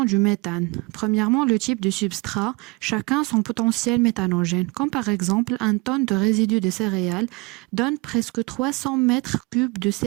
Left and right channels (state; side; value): quieter; left; 26.3 dB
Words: du méthane. Premièrement, le type de substrat, chacun son potentiel méthanogène, comme par exemple un tonne de résidus de céréales donne presque 300 mètres cubes de